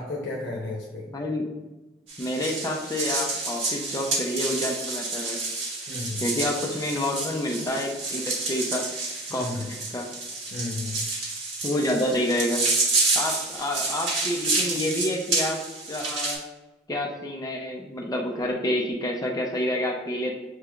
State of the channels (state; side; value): normal; both; correlation 0.36